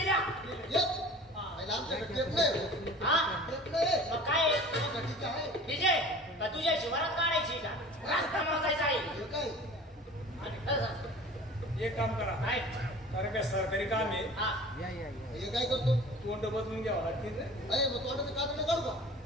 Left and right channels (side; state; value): both; normal; correlation 0.42